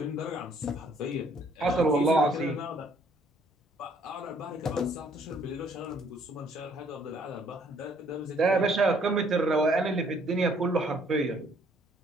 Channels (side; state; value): both; normal; correlation 0.63